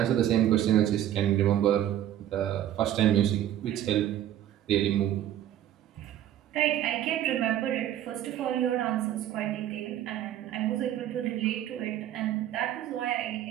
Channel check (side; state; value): left; quieter; 11.8 dB